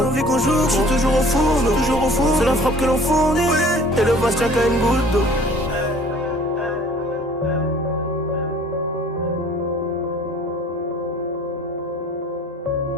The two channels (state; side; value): normal; both; correlation 0.51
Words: je suis toujours au fourneau. C'est la frappe que l'on fournit, et le vase tient qu'à une goutte d'eau.